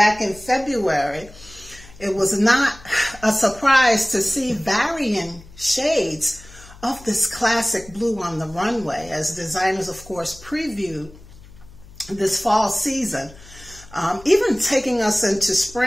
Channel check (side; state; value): left; noise; hum, 21 dB below the sound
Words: in February, it was not a surprise to see varying shades of this classic blue on the runway, as designers, of course, previewed this fall season, even taking us into